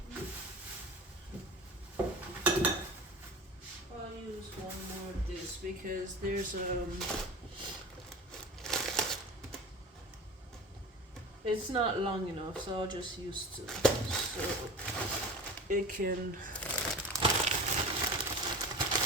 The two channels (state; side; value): normal; both; correlation 0.34